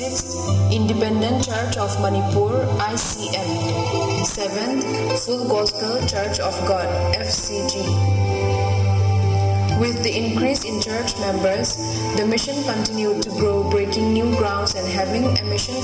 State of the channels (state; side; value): identical; both; correlation 1.00